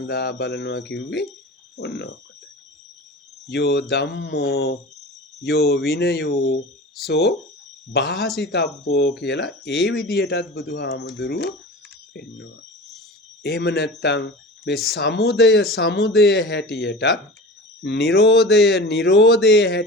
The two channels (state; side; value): normal; both; correlation 0.34